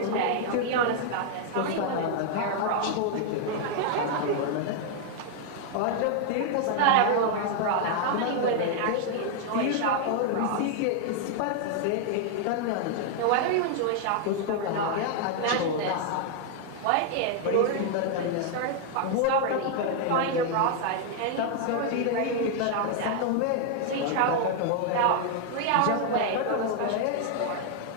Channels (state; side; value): different; both; correlation 0.00